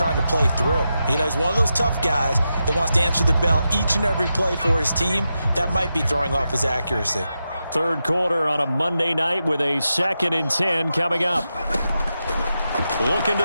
to play through. You know, he's one of those tough guys that wants to answer the bell each and every play for his team. That might be throwing off his accuracy. Third quarter on a Monday night with a 2nd and 10 coming up. Looking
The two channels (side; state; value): both; inverted; correlation -0.88